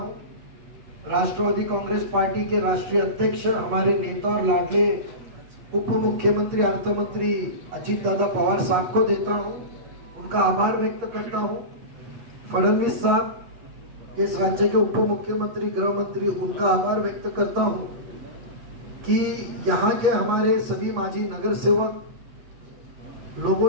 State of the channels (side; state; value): left; late; 8.6 ms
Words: राष्ट्रवादी कांग्रेस पार्टी के राष्ट्रीय अध्यक्ष, हमारे नेता और लाडले उप मुख्यमंत्री अर्थ मंत्री अजीत दादा पवार साहब को देता हूं, उनका आभार व्यक्त करता हूं। फडणवीस साहब, इस राज्य के उप मुख्यमंत्री, गृह मंत्री, उनका आभार व्यक्त करता हूं कि यहाँ के हमारे सभी माजी नगर सेवक लोगों